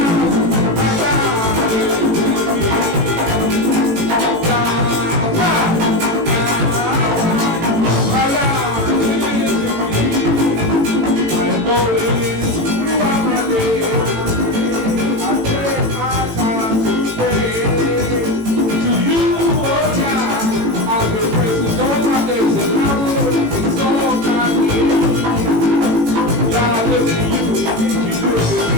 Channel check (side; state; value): left; late; 18 ms